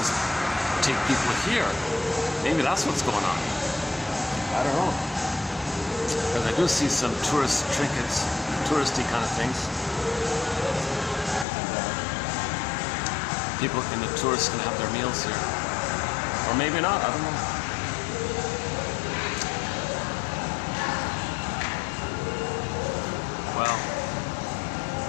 take people here. Maybe that's what's going on. I don't know. Because I do see some tourist trinkets, touristy kind of things. And people and the tourists can have their meals here. Or maybe not, I don't know. Well,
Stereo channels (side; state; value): right; drops out; at 11.5 s